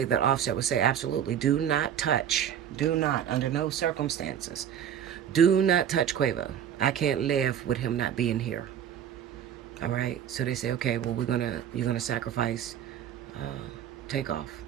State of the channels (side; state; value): left; quieter; 9.4 dB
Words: that Offset would say, absolutely, do not touch. Do not, under no circumstances. Do not touch Quavo. I can't live with him not being here. All right? So they say, okay, well, you're gonna sacrifice Takeoff